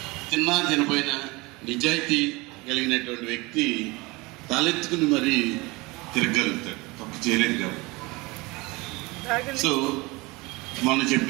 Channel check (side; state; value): left; quieter; 24.1 dB